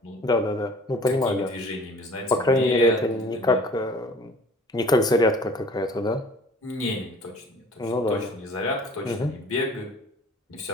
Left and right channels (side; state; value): both; normal; correlation 0.49